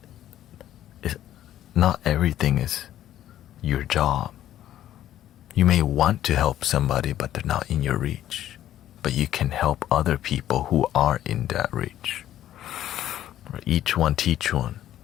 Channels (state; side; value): quieter; right; 12.2 dB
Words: not everything is your job. You may want to help somebody, but they're not in your reach. But you can help other people who are in that reach. Each one teach one.